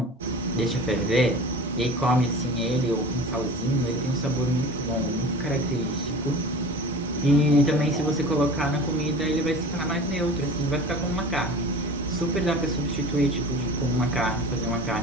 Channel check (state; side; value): normal; both; correlation 0.38